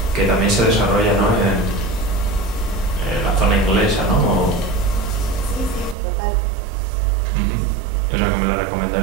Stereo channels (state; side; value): drops out; left; at 6.0 s